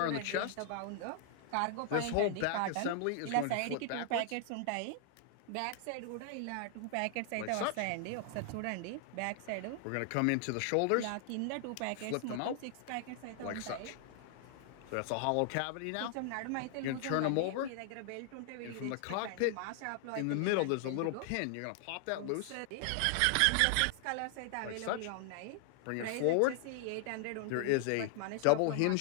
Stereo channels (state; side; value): different; both; correlation 0.00